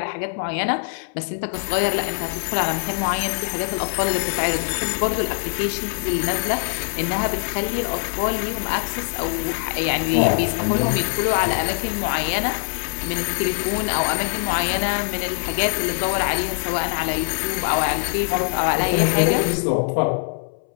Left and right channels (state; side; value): silent; right; 63 dB below the other